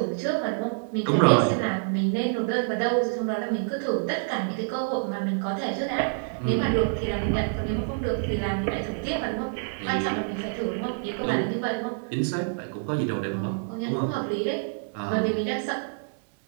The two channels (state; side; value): silent; left; digital silence